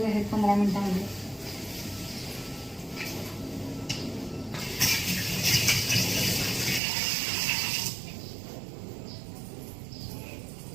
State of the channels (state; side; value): drops out; left; at 6.8 s